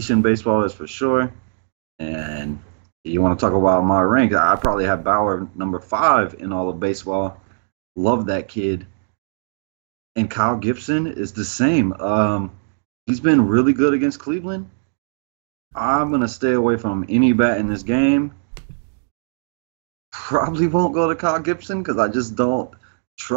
in baseball, that's for sure. And you want to talk about my rank, I probably have Bauer number 5 in all of baseball. Love that kid. And Kyle Gibson is the same. He's been really good against Cleveland. I'm going to stay away from any bat in this game. Probably won't go to Kyle Gibson because I just don't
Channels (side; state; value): left; silent; digital silence